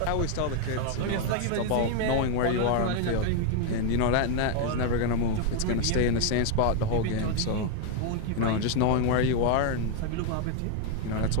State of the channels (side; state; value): both; different; correlation 0.01